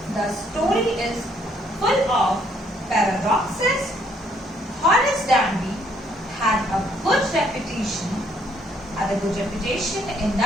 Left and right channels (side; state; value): both; normal; correlation 0.67